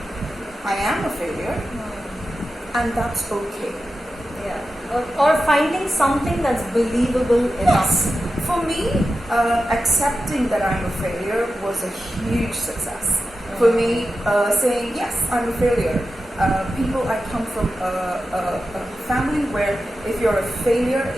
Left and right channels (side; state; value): both; normal; correlation 0.92